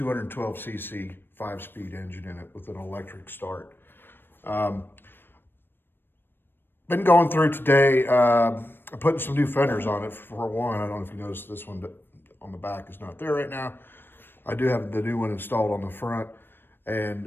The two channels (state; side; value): late; right; 0.098 ms